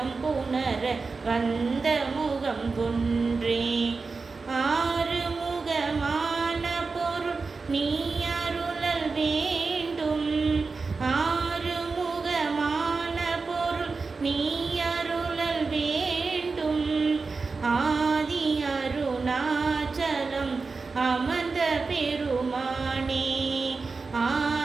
புணர வந்த முகம் ஒன்றே. ஆறுமுகமான பொருள் நீ அருளல் வேண்டும். ஆறுமுகமான பொருள் நீ அருளல் வேண்டும். ஆதி அருணாச்சலம் அமர்ந்த பெருமானே.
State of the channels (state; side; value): quieter; left; 4.3 dB